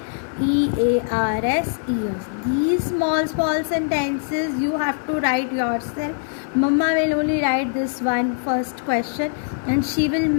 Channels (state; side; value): silent; right; digital silence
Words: EARS, ears. These small sentences you have to write yourself. Mama will only write this one first question and she will